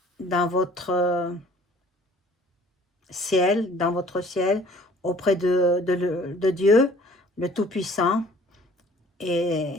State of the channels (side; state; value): both; normal; correlation 0.53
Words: dans votre ciel, auprès de Dieu, le Tout-Puissant.